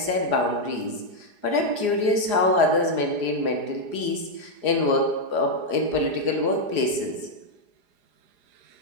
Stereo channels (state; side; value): late; left; 4.8 ms